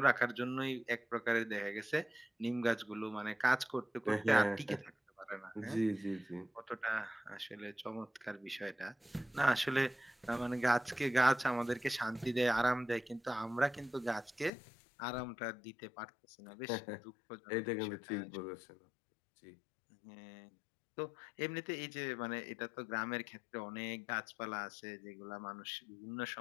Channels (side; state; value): right; drops out; at 14.5 s